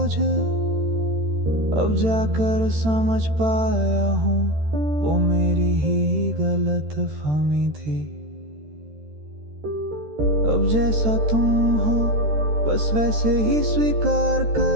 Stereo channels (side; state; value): left; late; 13 ms